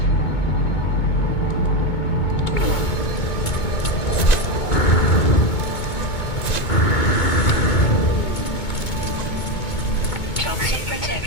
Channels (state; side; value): late; right; 2.2 ms